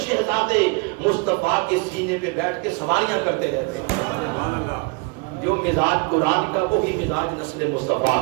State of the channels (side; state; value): left; quieter; 27.5 dB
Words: شہزادے مصطفیٰ کے سینے پہ بیٹھ کے سواریاں کرتے رہتے ہیں. جو مزاج قرآن کا وہی مزاج نسل مصطفیٰ